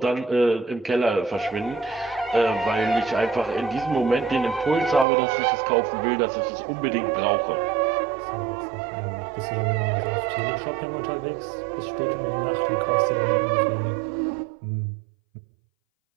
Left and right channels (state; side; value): drops out; left; at 5.1 s